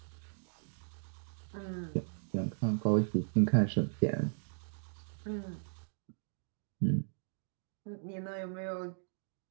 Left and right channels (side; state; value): left; silent; digital silence